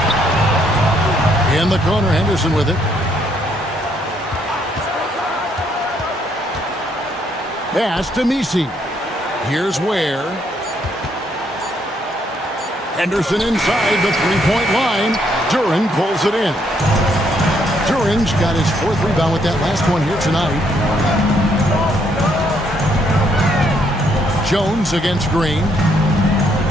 In the corner, Henderson with it. Pass to Misi. Here's Ware. Henderson inside the three-point line. Duren pulls it in. Duren's got his 4th rebound with that last one here tonight. Jones against Green.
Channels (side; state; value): both; normal; correlation 0.71